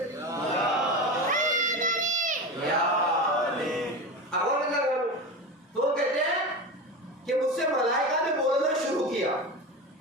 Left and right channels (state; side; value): normal; both; correlation 0.24